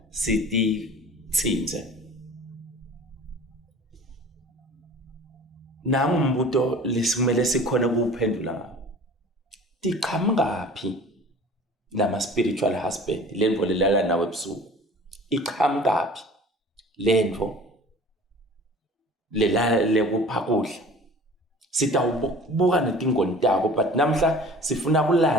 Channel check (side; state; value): both; normal; correlation 0.44